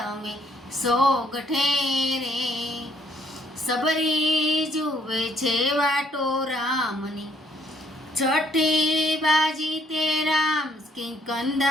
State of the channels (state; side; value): normal; both; correlation 0.67